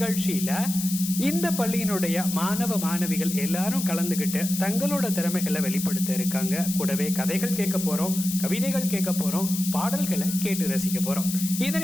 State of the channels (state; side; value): noise; left; hiss, 6 dB below the sound